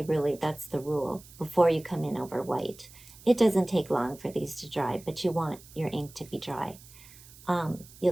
really that's the rule, before you come in over white. It doesn't take long for these to dry, but you want your ink to be dry.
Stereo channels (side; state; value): right; noise; hiss, 21 dB below the sound